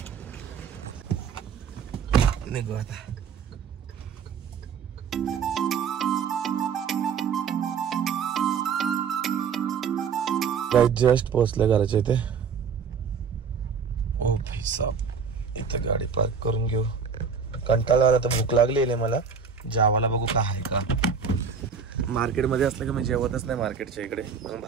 निघू आता. जस्ट पोहोचले घराच्या इथे. ओ भाई साहब, इथे गाडी पार्क करून घेऊ. कंटाळा आला तर भूक लागली मला. जेवायला बघू का आहे का. मार्केटमध्ये असलं की मी जेवतच नाही मार्केटच्या इकडे, मग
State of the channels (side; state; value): left; quieter; 6.2 dB